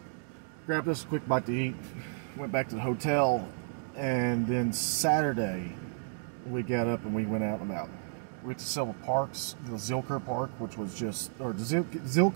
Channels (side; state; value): left; silent; digital silence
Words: grabbed us a quick bite to eat, went back to the hotel, and then Saturday we got up and we went out and about. We went to several parks, the Zilker Park, which was just, or the